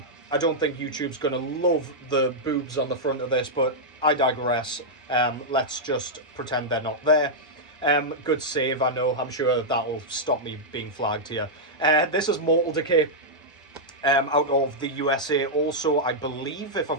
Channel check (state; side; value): normal; both; correlation -0.06